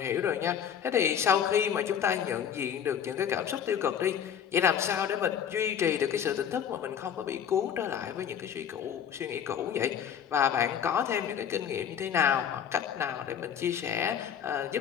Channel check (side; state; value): right; quieter; 8.6 dB